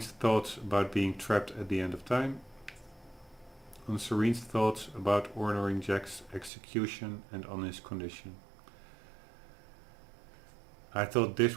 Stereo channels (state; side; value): drops out; left; at 6.5 s